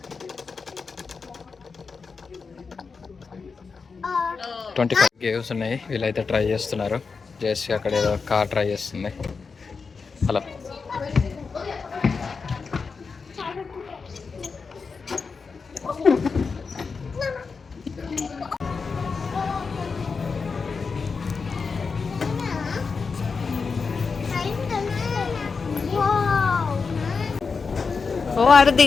25 గేమ్స్ ఉన్నాయి. వీళ్ళైతే ట్రై చేస్తున్నారు. జేసీ అక్కడ ఏదో కార్ ట్రై చేస్తుంది అలా. ఓ ఆడు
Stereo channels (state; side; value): quieter; right; 5.0 dB